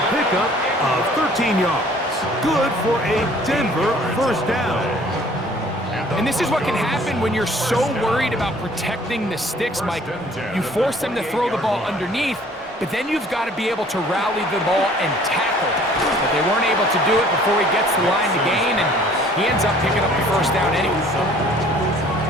pickup of 13 yards. Good for a Denver first down. And this is what can happen when you're so worried about protecting the sticks, Mike. You force them to throw the ball underneath, but then you've got to be able to rally the ball and tackle. But they weren't able to do it before he gets the line to gain, and he ends up picking up the first down anyway.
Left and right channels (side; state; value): both; normal; correlation 0.54